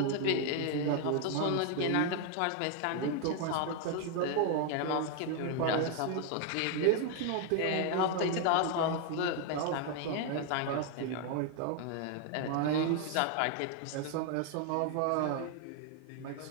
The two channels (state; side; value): different; both; correlation 0.00